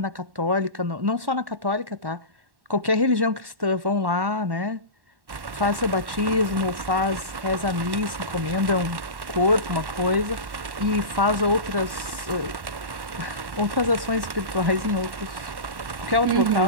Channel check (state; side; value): late; left; 1.1 ms